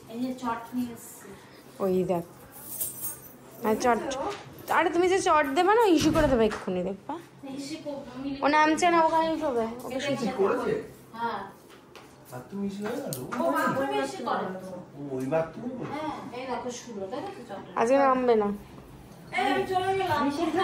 ওই দেখ চট, আরে তুমি যে চট দেবে না ইস্যু করে দেবে এক্ষুনি, দেখবা ও নামছে না, ওখানে শোবে। ওকে আজকে নামবে না।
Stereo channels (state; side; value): identical; both; correlation 1.00